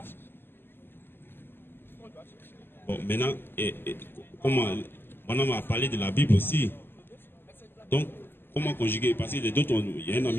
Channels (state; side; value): late; right; 0.10 ms